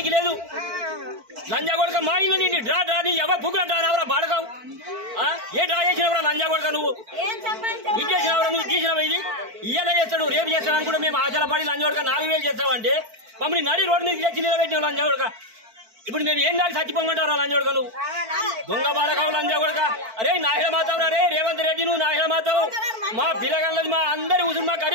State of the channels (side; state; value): left; late; 4.5 ms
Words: లేదు లంజాగొడక మా ఇల్లు నిన్ను డ్రా డ్రా నీ ఎవరు బుక్కులు డ్రా నావరా బాడకావు ఏ డ్రా చేసినవరా లంజాగొడక నువ్వు ఇది చేసినవరా నువ్వు తీసినవా ఇది ఇయ్యాల చేస్తాడు రేపు చేస్తాడు అని కూడా మేము ఆశల పడి లంజాగొడక 4000 చేస్తావంటే మమ్మల్ని నడి రోడ్డు మీద తెచ్చి నిలబెట్టినావు లంజాగొడక ఇప్పుడు మేము ఏం దాకా చచ్చిపోమంటారా లంజాగొడక నువ్వు దొంగ బాడకావు లంజాగొడక అరే నాహిల మాతావు రే రేవంత్ రెడ్డి నువ్వు నాహిల మాతావు మా పిల్లగాళ్ళది మా అందరి ఉసురు మా